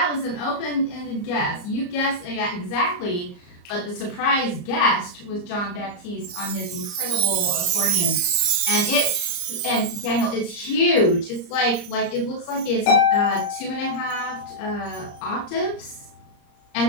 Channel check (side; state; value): right; late; 34 ms